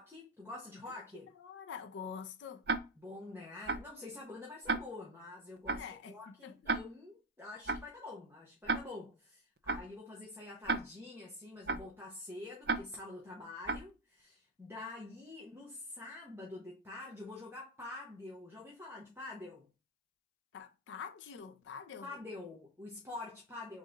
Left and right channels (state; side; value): normal; both; correlation 0.07